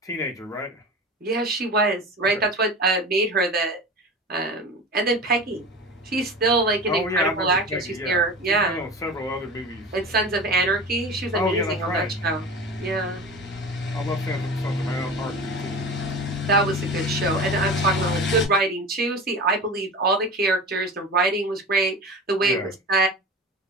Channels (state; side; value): normal; both; correlation 0.32